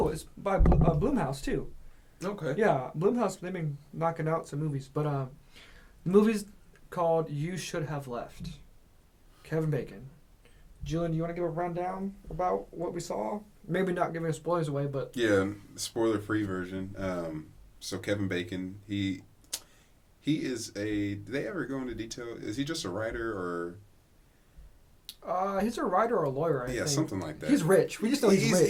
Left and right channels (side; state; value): both; identical; correlation 1.00